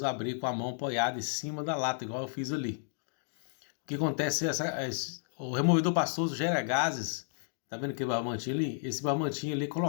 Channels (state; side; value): silent; right; digital silence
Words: abrir com a mão apoiada em cima da lata, igual eu fiz ali. O que acontece é o removedor pastoso gera gases, tá vendo aquele barbantinho ali? Esse barbantinho ali é